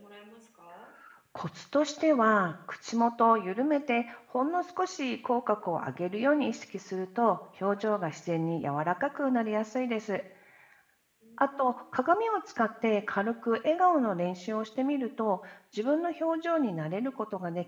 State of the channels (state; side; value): identical; both; correlation 1.00